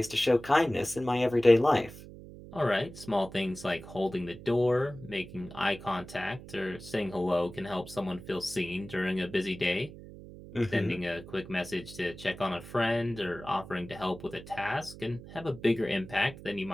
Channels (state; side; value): noise; right; hum, 15 dB below the sound